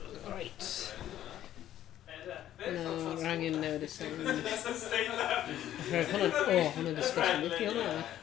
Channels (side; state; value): right; quieter; 12.1 dB